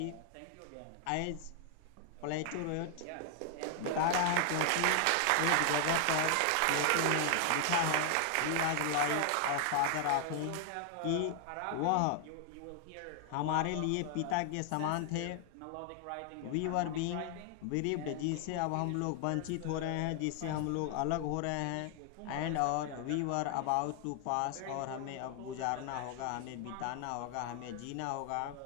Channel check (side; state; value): both; different; correlation 0.00